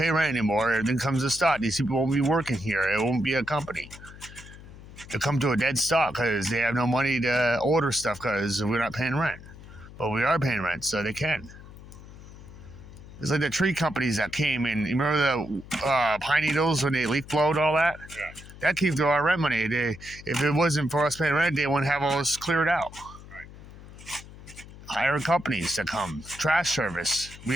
rent anymore, everything comes to stop. These people won't be working here. It won't be a company. They'll come to a dead stop because they have no money to order stuff because we're not paying rent. But we are paying rent, so they can. It's like the tree companies that came in. You remember the pine needles when they leaf blowed all that? Yeah. That came through our rent money. If it wasn't for us paying rent, they wouldn't have all this cleared out. Right. Hire companies to come. Trash service. We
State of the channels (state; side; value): noise; left; hum, 17 dB below the sound